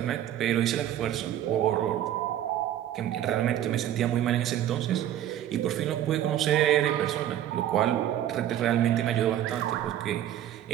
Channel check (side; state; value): left; quieter; 11.6 dB